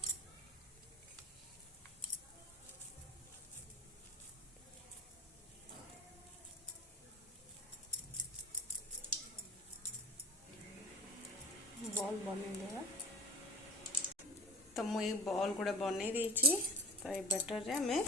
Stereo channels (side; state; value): both; normal; correlation 0.35